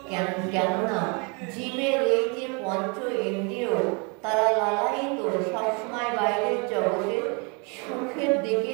কেননা জীবের এই যে পঞ্চ ইন্দ্রিয়, তারা লালায়িত সবসময় বাইরের জগতে সুখের দিকে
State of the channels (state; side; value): quieter; left; 32.6 dB